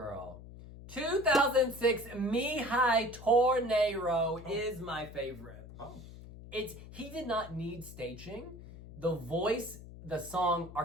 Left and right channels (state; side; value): noise; left; hum, 15 dB below the sound